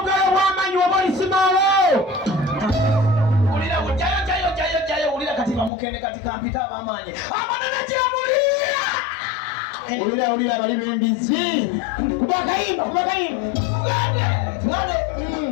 wamanyi wabolisimalo ulira jayo ulira katika mukende katika mpita abamanyi amanana jamulia ulira bali bembizi kuba karibu ngade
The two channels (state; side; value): drops out; right; at 5.7 s